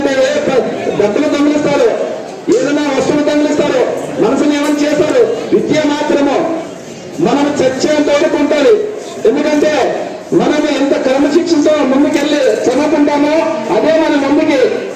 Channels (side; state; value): both; identical; correlation 1.00